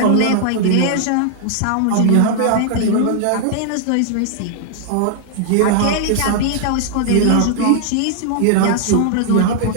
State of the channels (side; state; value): both; different; correlation 0.00